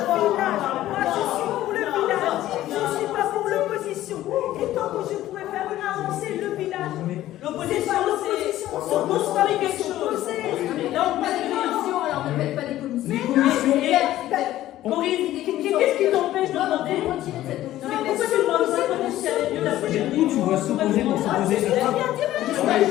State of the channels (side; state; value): right; quieter; 14.2 dB